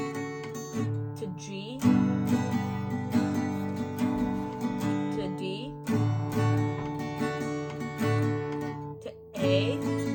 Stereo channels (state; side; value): identical; both; correlation 1.00